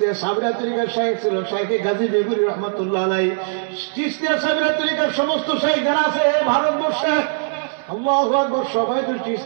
সাবিরিয়া তরিকার শায়েখ ছিল শায়েখে গাজী বেগুরি রহমতুল্লাহ আলাই। চিশতিয়া সাবিরিয়া তরিকার সমস্ত শায়েখ যারা আছে ভারতবর্ষে, আল্লাহু আকবার, সবাই তো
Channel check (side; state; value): left; silent; digital silence